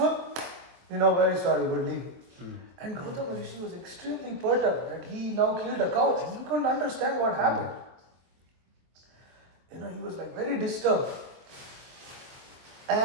Very sorry, we're leaving. And Gautama Rishi was extremely perturbed that he now killed a cow. And he couldn't understand what happened. He was like very disturbed.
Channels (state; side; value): late; left; 23 ms